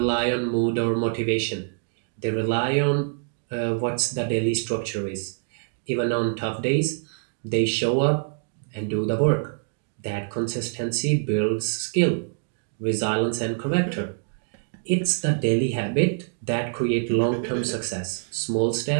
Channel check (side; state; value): left; silent; digital silence